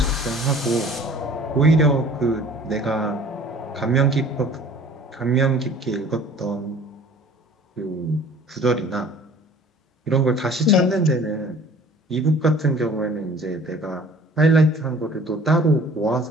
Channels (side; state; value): both; normal; correlation 0.49